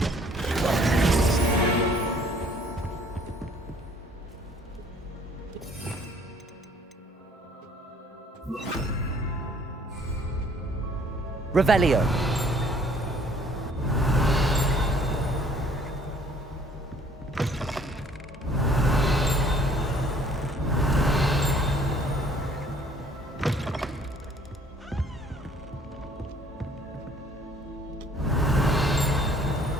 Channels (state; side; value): normal; both; correlation 0.58